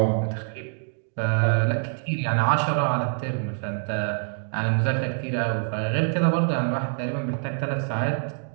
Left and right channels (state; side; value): silent; left; 56 dB below the other